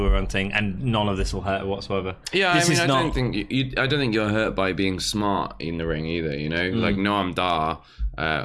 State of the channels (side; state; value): both; identical; correlation 1.00